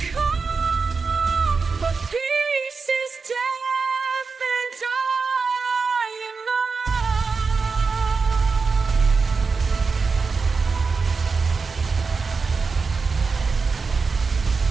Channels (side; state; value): left; quieter; 4.7 dB